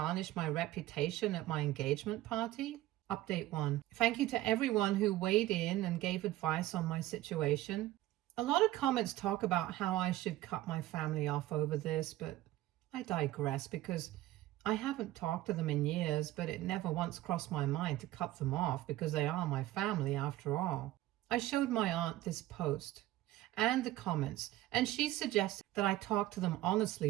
my reputation at my engagement party? Update 1. Thank you to everyone who weighed in and gave advice on my situation. A lot of comments talk about how I should cut my family off over this, but I digress because I haven't talked to them in years, but it never once crossed my mind to cut them off because they are my family after all. I showed my aunt this post and the comments, and she suggested that I talk to them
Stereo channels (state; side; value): quieter; left; 15.8 dB